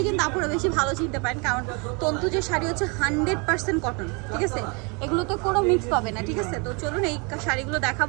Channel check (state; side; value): quieter; left; 31.7 dB